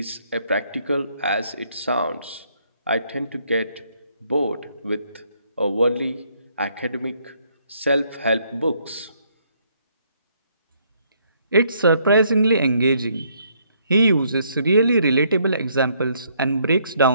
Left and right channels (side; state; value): both; inverted; correlation -0.69